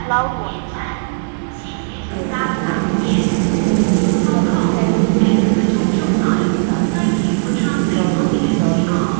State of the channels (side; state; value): left; silent; digital silence